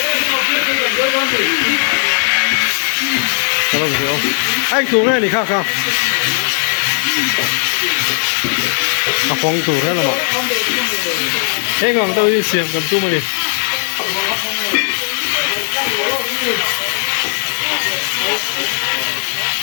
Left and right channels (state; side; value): silent; right; 69 dB below the other